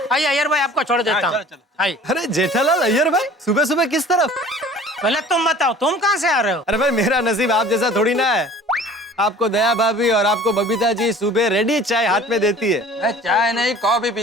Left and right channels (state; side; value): normal; both; correlation 0.46